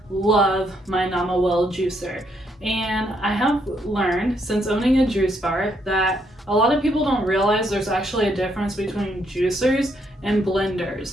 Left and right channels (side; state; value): both; normal; correlation 0.74